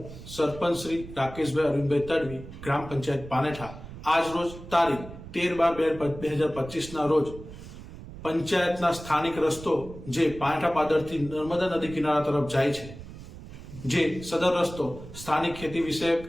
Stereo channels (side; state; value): right; noise; rumble, 14 dB below the sound